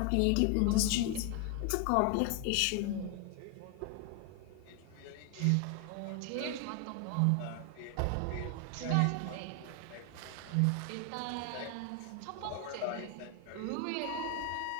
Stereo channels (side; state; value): both; different; correlation 0.00